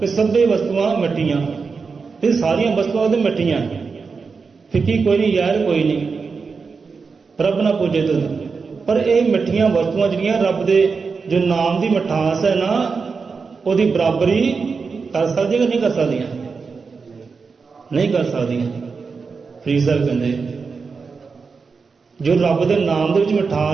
ਇਹ ਸਭੇ ਵਸਤੂਆਂ ਮਿੱਠੀਆਂ। ਇਹ ਸਾਰੀਆਂ ਵਸਤੂਆਂ ਉਹਦੇ ਮਿੱਠੀਆਂ, ਫਿੱਕੀ ਕੋਈ ਨਹੀਂ, ਯਾਰ ਕੋਈ ਨਹੀਂ, ਰੱਬ ਨਾ ਪੂਜੇ ਦੁੱਧ। ਪਰ ਇਹ ਮਿੱਠੀਆਂ ਵਸਤੂਆਂ ਜਿਹੜੀਆਂ ਰੱਬ ਦੇ ਜੋ ਨਾਮ ਦੀ ਮਿਠਾਸ ਹੈ ਨਾ, ਉਹਦੀ ਬਰਾਬਰੀ ਕਰ ਸਕਦੀਆਂ ਕਿ ਨਹੀਂ ਕਰ ਸਕਦੀਆਂ? ਨਹੀਂ ਕਰ ਸਕਦੀਆਂ। ਫਰੀਦ ਸਾਹਿਬ ਕਹਿੰਦੇ ਜੋ ਰੱਬ ਦੇ ਨਾਮ ਦੇ ਵਿੱਚ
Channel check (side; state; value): left; quieter; 5.0 dB